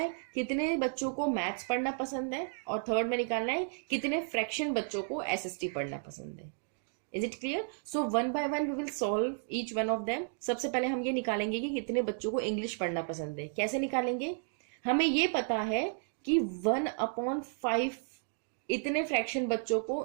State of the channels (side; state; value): left; silent; 56 dB below the other